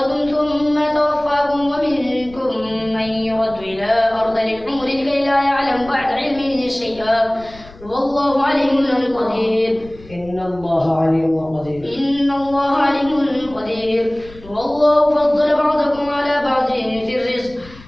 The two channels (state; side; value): noise; left; rumble, 21 dB below the sound